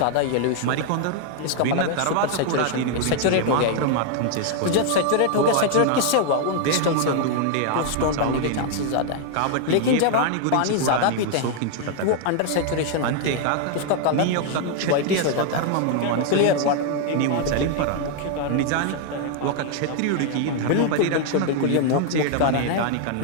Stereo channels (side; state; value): both; different; correlation 0.00